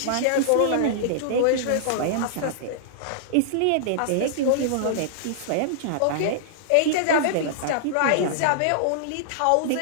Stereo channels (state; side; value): different; both; correlation -0.02